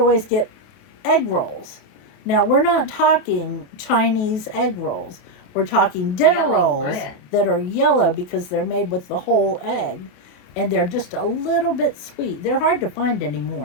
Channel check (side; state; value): right; late; 28 ms